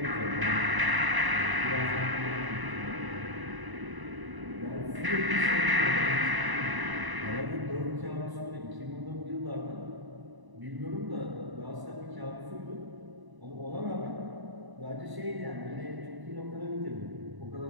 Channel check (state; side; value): late; left; 1.0 ms